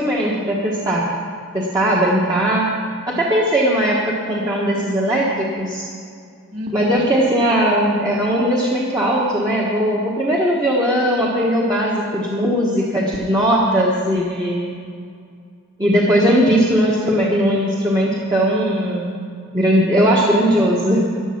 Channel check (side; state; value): both; normal; correlation 0.47